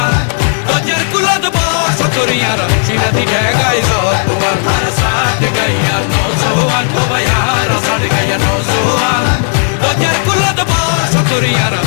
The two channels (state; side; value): silent; right; 72 dB below the other